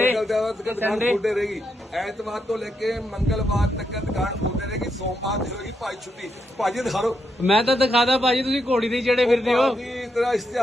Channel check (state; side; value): normal; both; correlation 0.81